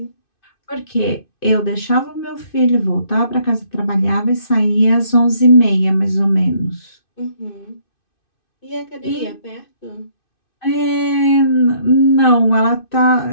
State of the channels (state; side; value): late; right; 2.6 ms